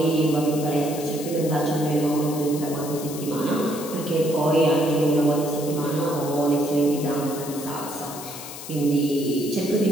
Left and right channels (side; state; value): left; noise; hiss, 12 dB below the sound